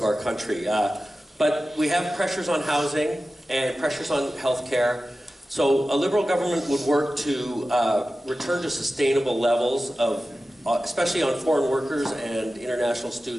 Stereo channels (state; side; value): normal; both; correlation 0.94